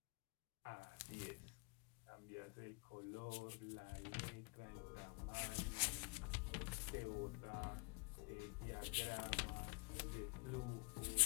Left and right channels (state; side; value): quieter; right; 32.7 dB